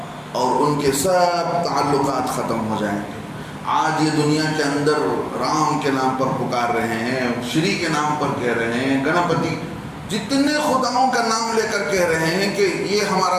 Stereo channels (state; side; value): identical; both; correlation 1.00